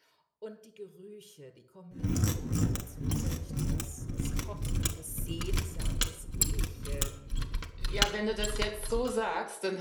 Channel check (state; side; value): identical; both; correlation 1.00